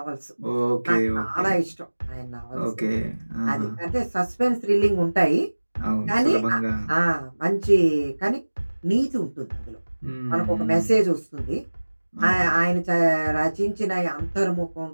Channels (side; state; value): both; inverted; correlation -1.00